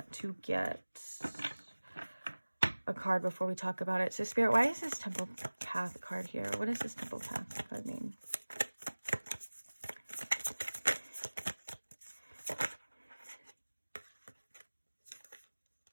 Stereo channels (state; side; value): inverted; both; correlation -1.00